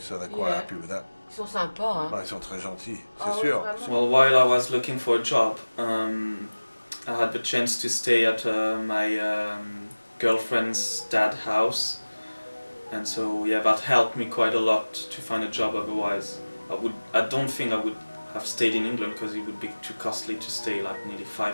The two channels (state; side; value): inverted; both; correlation -1.00